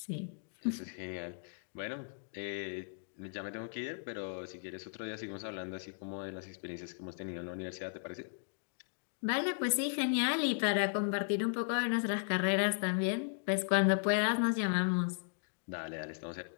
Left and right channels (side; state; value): right; silent; digital silence